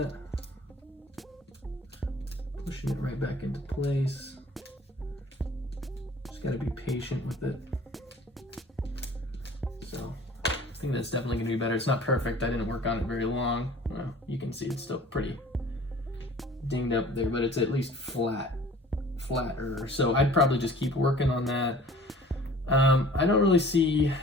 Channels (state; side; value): normal; both; correlation 0.48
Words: Pushing it right back into place. Just gotta be patient with it. So I think that's definitely gonna be better. It's not perfect, I didn't work on it very long. Well, you can see it's still pretty dinged up there, but it's at least flat flatter. So I'd probably just keep working on that. I don't really see